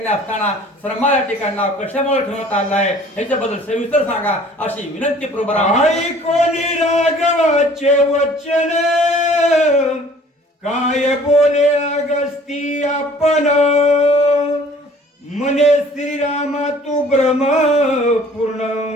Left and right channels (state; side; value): normal; both; correlation 0.52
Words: असताना श्रमा या ठिकाणी नाव कशामुळे ठेवण्यात आलं आहे ह्याच्याबद्दल सविस्तर सांगा, अशी विनंती प्रभू कोणी राघवाचे वचन काय बोले अगस्ती आपण, मने श्रीरामा तू ब्रह्म पूर्ण